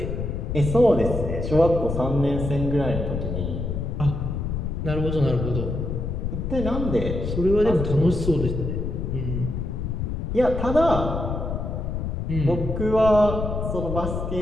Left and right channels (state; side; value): noise; left; rumble, 3 dB below the sound